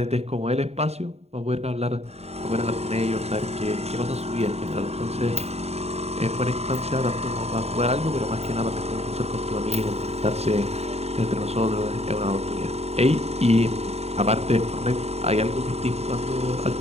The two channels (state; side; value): late; left; 0.30 ms